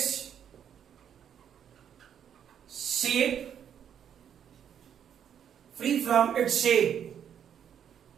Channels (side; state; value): left; quieter; 8.8 dB